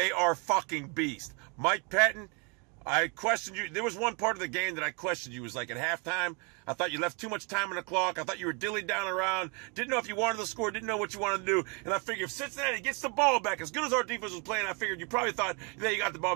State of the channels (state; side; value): quieter; left; 30.9 dB